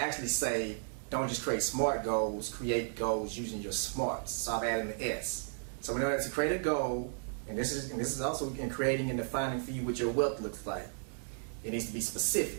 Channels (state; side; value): silent; left; digital silence